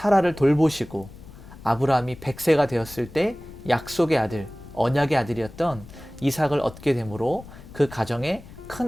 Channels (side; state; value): left; noise; rumble, 18 dB below the sound